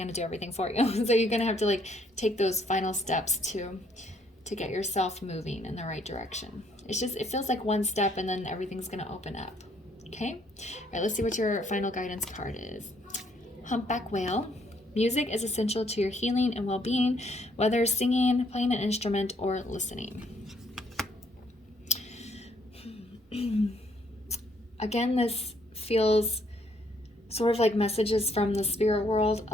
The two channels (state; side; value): normal; both; correlation 0.68